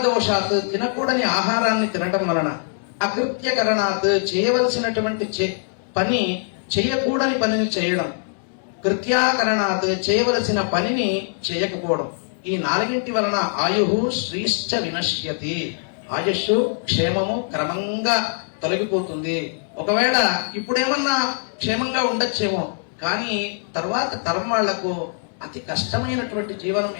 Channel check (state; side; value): silent; right; 64 dB below the other